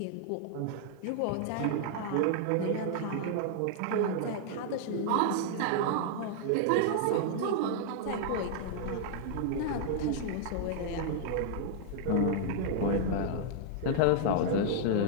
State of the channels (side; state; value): both; different; correlation -0.01